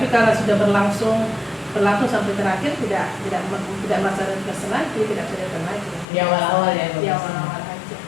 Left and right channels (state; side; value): drops out; right; at 6.1 s